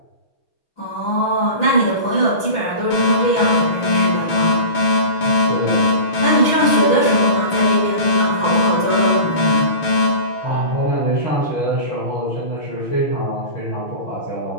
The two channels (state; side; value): late; right; 6.3 ms